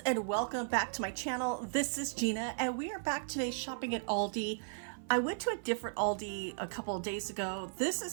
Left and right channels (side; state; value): left; silent; 54 dB below the other